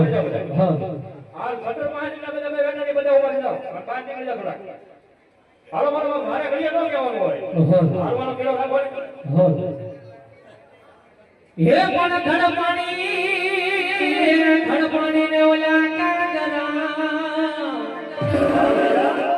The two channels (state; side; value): identical; both; correlation 1.00